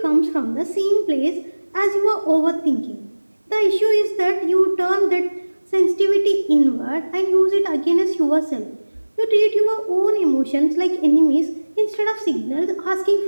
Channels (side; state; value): both; inverted; correlation -1.00